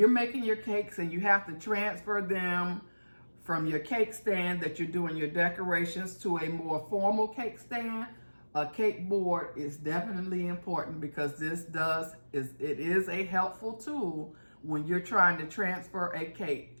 making your cakes and you have to transfer them from your cake stand that you're doing your decorations to a more formal cake stand, a cake board is definitely important, because it is a helpful tool when you're trying to transfer a cake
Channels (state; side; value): inverted; both; correlation -1.00